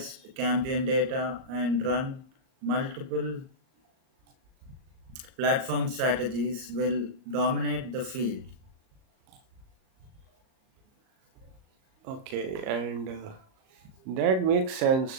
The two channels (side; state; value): left; late; 38 ms